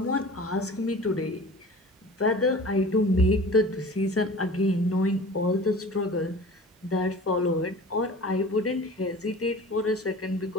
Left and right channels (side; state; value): both; normal; correlation 0.41